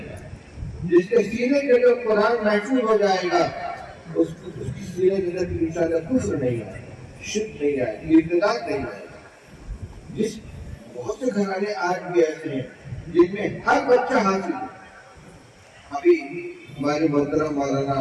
جس کے سینے کے اندر قرآن محفوظ ہو جائے گا اس کی سینے کے اندر انشاءاللہ کفر نہیں آئے گا، شرک نہیں آئے گا، ارتداد نہیں آئے گا. جس بہت سے گھرانے آج بھی ایسے ہیں جن میں ہر بچہ حاصل ہے. ابھی ہمارے محترم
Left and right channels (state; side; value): identical; both; correlation 1.00